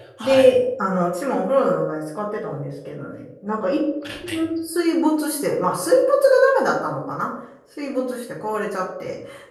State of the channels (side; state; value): both; identical; correlation 1.00